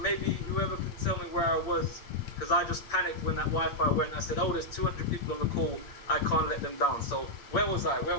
maybe whoever can tell me where I was, because I just panicked when that Wi-Fi went. I said, oh, there's 200 people on the call. I can't let them down. So where was I?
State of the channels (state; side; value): late; right; 8.8 ms